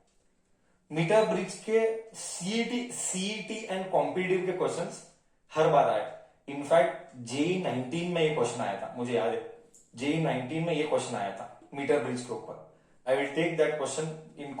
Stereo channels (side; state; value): both; identical; correlation 1.00